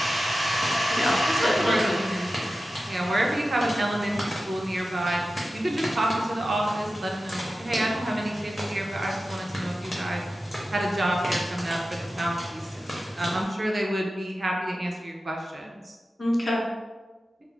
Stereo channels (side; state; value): both; normal; correlation 0.94